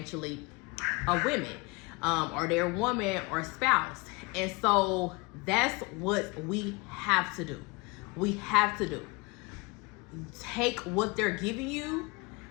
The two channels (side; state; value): right; quieter; 26.7 dB